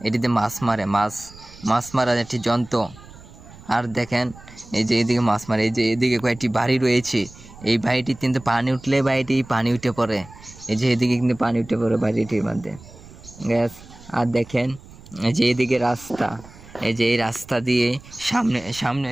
এটিতে মাছ মারার একটি যন্ত্র। আর দেখেন এই যে এদিকে মাছ মারে, এই যে এদিকে কয়েকটি বাড়ি রয়েছে। এই বাড়িটি কিন্তু পানি উঠলে বাড়িটি পানি উঠে পড়ে। এই যে এদিকে কিন্তু পানি উঠে পড়ে বাড়িটির মধ্যে গ্যাস। আর দেখেন এই যে এদিকে রাস্তা, এই যে এই রাস্তা দিয়ে সামনে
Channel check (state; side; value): noise; right; rumble, 20 dB below the sound